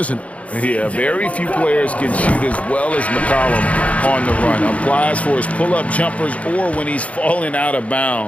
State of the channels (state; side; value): late; right; 0.065 ms